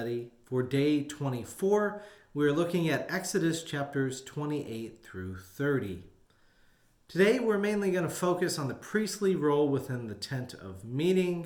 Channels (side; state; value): both; identical; correlation 1.00